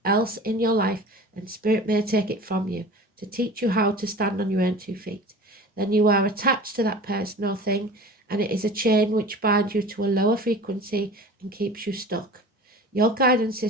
else in your life, then Spirit may take it from you to teach you how to stand on your own 2 feet. Then you are attached to that person or thing, and it is a chain which binds you to a lower frequency and keeps you stuck. Your guidance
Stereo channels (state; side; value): normal; both; correlation 0.39